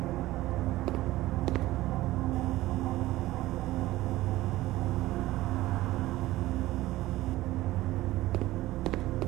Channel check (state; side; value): quieter; left; 16.9 dB